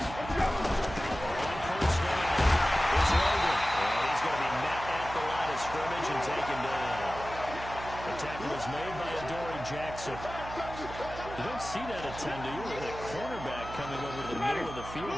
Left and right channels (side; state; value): right; noise; hum, 11 dB below the sound